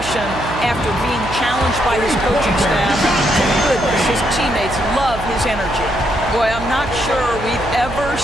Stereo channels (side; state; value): right; noise; hum, 10 dB below the sound